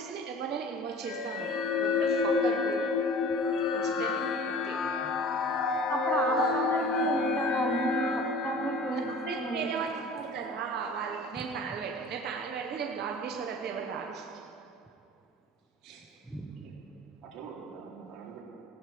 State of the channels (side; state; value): both; normal; correlation 0.42